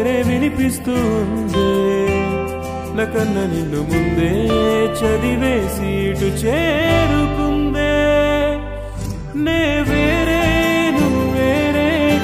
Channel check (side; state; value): both; identical; correlation 1.00